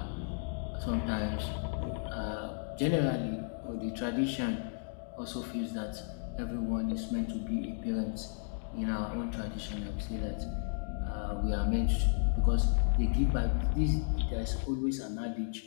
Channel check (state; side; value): silent; right; digital silence